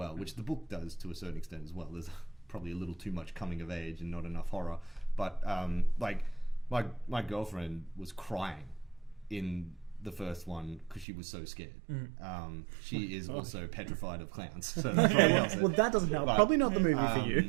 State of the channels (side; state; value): left; drops out; at 11.1 s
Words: which the book does to a certain extent as well. There's probably a little too much coming of age and not enough horror. But like my girlfriend was crying in the first one because she was so scared. She is also petrified of clowns. So that probably helps it. Well, that doesn't help. But, Probably not the movie for